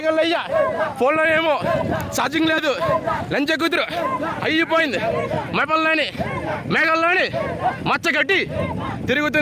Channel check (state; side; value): identical; both; correlation 1.00